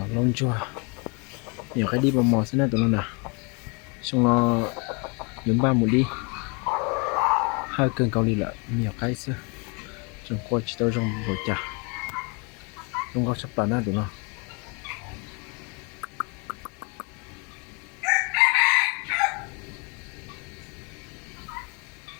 lông chua nhiều cái đi vào mò xin tụi nó nè xong nó dùng ba một đi hai cân cao ly là nhiều cái xưa trong qua chỉ tao trong bộ chả trong có sắp tàn á tụi nó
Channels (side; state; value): right; quieter; 33.1 dB